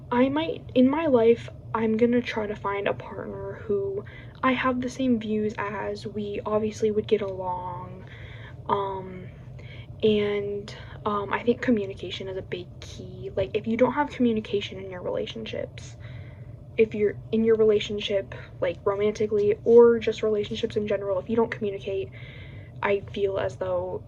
might, in my life, I'm gonna try to find a partner who I have the same views as. We obviously would get along, and I think communication is a big key. Like, if you don't have communication in your relationships, if you're in your relationship, like romantically or just relationships in general, if you don't communicate, I feel as though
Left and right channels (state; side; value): identical; both; correlation 1.00